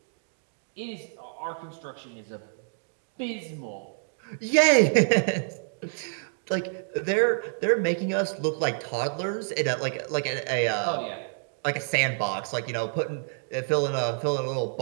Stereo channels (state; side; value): silent; left; digital silence